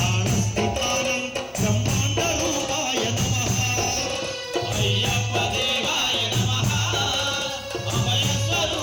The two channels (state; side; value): identical; both; correlation 1.00